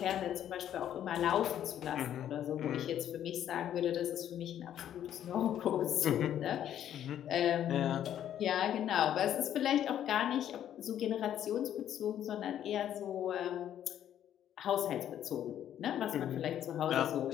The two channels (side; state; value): right; quieter; 10.6 dB